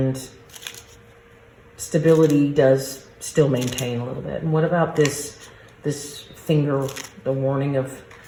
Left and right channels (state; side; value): identical; both; correlation 1.00